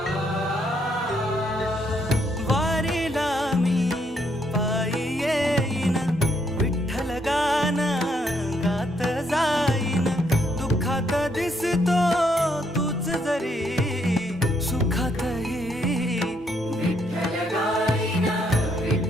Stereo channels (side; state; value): both; normal; correlation 0.73